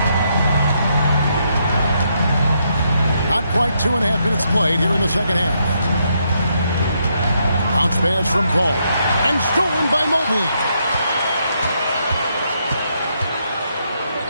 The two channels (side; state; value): both; inverted; correlation -0.77